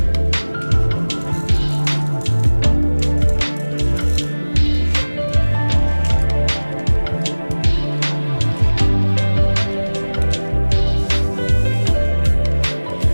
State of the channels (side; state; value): both; inverted; correlation -1.00